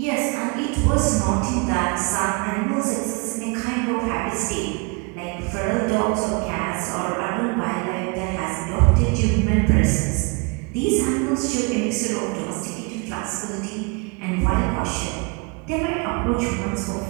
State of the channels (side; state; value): left; quieter; 31.1 dB